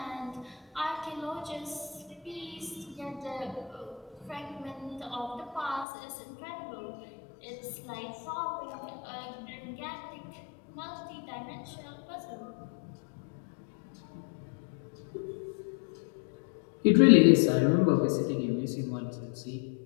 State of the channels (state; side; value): drops out; right; at 5.9 s